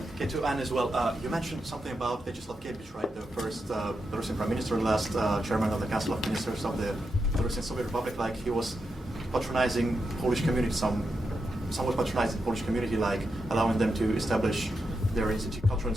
Okay, to Anne as well. You mentioned something about Vyacheslav Gebich, right? The first Belarusian prime minister, last chairman of the Council of Ministers of the Belarusian Soviet Republic. Like he was patronizing Polish community, somewhat patronizing the Polish community, like allowing them to establish their cultural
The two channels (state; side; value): normal; both; correlation 0.86